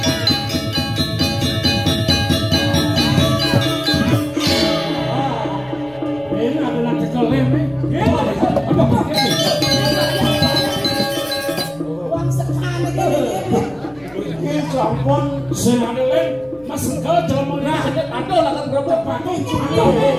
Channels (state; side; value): noise; left; rumble, 27 dB below the sound